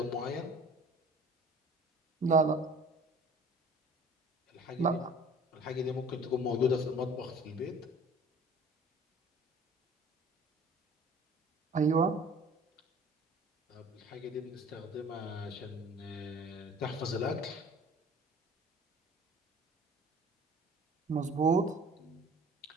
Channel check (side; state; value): both; normal; correlation 0.47